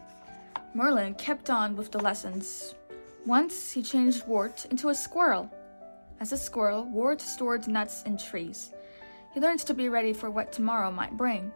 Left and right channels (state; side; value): inverted; both; correlation -1.00